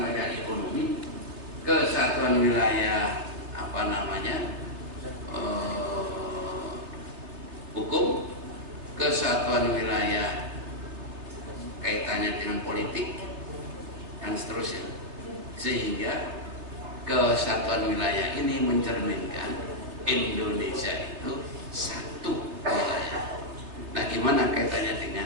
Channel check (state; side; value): late; left; 3.4 ms